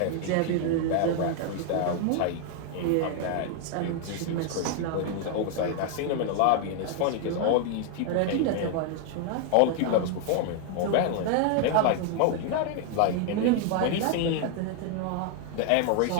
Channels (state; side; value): different; both; correlation 0.00